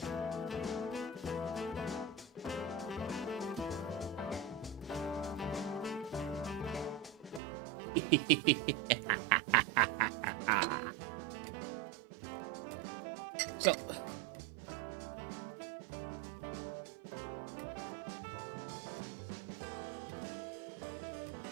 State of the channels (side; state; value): left; drops out; at 7.4 s